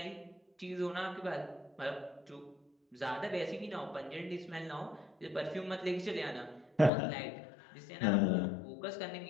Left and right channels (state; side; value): drops out; right; at 6.9 s